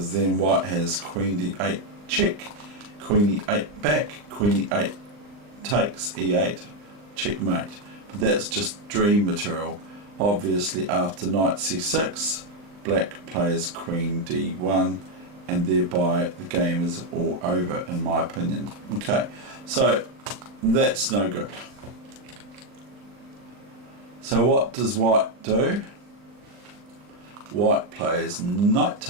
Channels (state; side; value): late; left; 39 ms